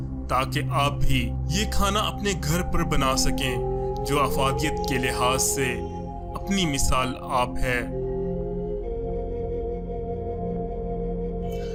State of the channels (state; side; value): identical; both; correlation 1.00